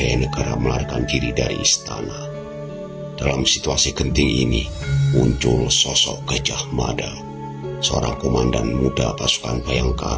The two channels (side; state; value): both; identical; correlation 1.00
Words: melarikan diri dari istana. Dalam situasi genting ini, muncul sosok Gajah Mada, seorang komandan muda pasukan